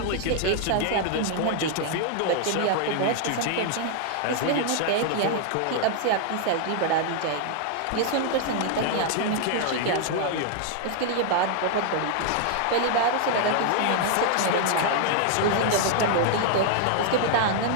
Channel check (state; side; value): different; both; correlation 0.00